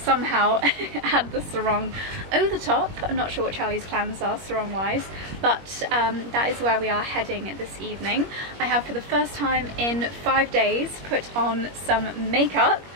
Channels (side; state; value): left; late; 21 ms